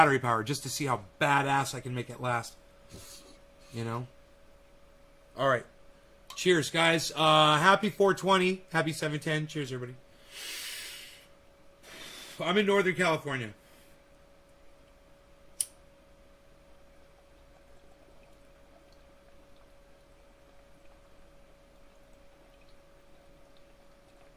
power just to see how badass I can make it last. You know? Alright. Cheers, guys. Happy 420. Happy 710. Cheers, everybody. I'm in Northern California.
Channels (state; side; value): identical; both; correlation 1.00